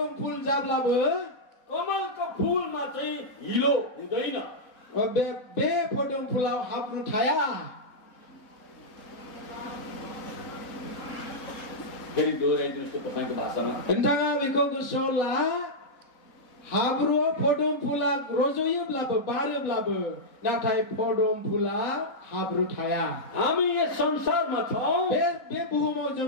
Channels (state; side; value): late; right; 3.8 ms